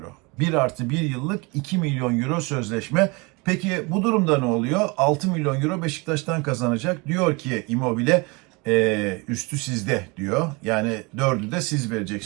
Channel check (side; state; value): left; quieter; 27.4 dB